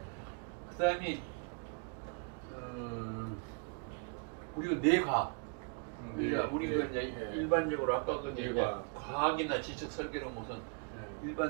그다음이 우리가 뇌과 그러니까 우리가 이제 일반적으로 아까 그 이제 뇌과학. 과학이나 지적 설계는 무슨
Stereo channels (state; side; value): quieter; left; 37.2 dB